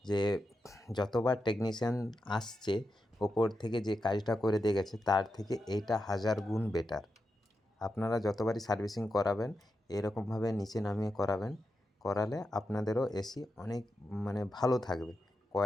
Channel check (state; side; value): normal; both; correlation 0.88